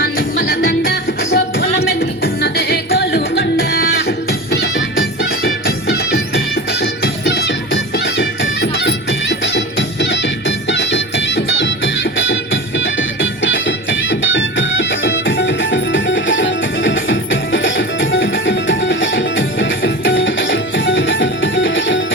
నిమ్మల దండ అగో బోనం ఎత్తుకున్నదే గోలుకొండ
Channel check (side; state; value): both; normal; correlation 0.30